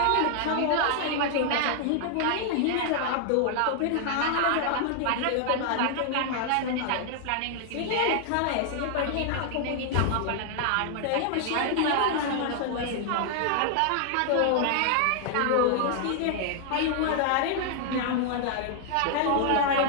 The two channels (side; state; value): both; different; correlation 0.00